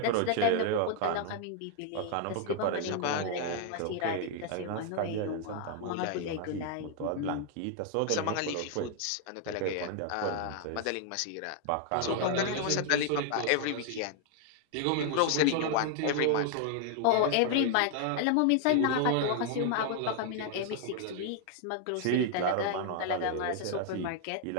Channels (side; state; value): both; different; correlation 0.00